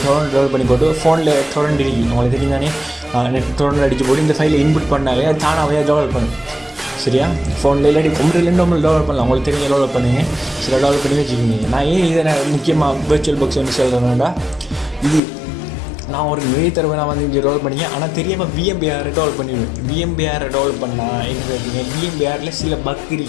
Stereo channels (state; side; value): drops out; right; at 15.2 s